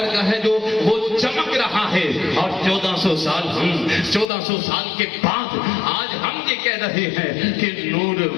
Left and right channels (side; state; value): right; drops out; at 4.3 s